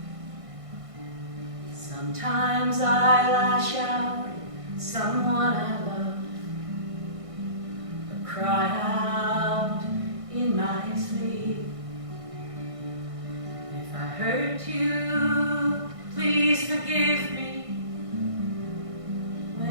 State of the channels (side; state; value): left; late; 1.6 ms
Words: Sometimes I lash out at someone I love, or cry out in my sleep. If I hurt you, please forgive me.